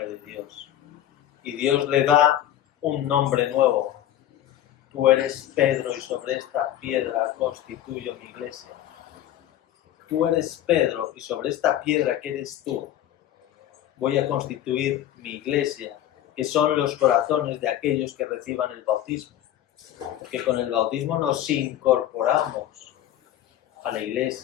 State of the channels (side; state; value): right; quieter; 12.1 dB